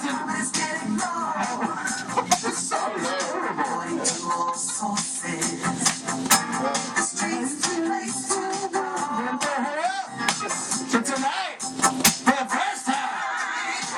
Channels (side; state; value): both; identical; correlation 1.00